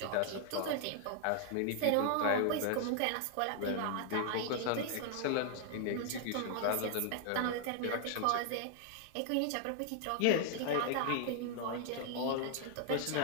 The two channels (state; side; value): different; both; correlation 0.00